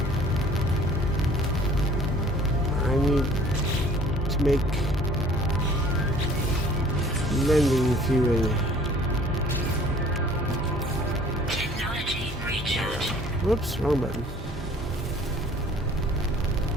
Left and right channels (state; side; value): normal; both; correlation 0.53